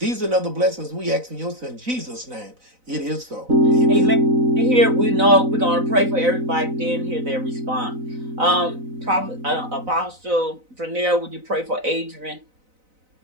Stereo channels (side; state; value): left; late; 4.0 ms